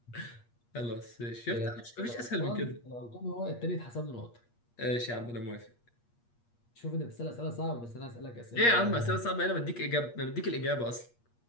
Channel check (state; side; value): late; right; 8.4 ms